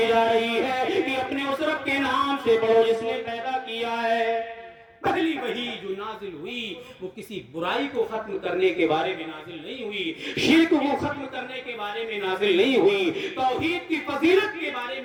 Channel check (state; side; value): identical; both; correlation 1.00